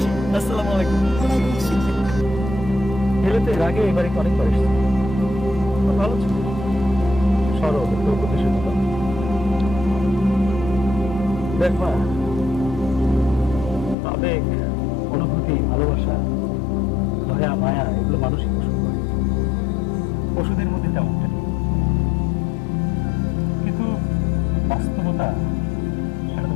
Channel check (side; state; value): right; drops out; at 14.0 s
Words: আসসালামু আলাইকুম। ওয়ালাইকুম আসসালাম। এলে তো এর আগে এবারে অনেকবার এসেছি, খুব ভালো ছিল, সরল প্রতিশোধ। দেখ মা, আবেগ, অনুভূতি, ভালোবাসা, দয়া, মায়া এগুলো মানুষই পোষণ করে, পশুদের মধ্যে তেমনটা নেই। কিন্তু বাস্তবতা সেটা তো